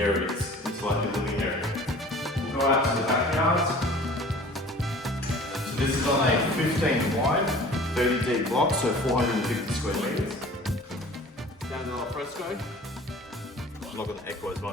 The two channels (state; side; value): normal; both; correlation 0.45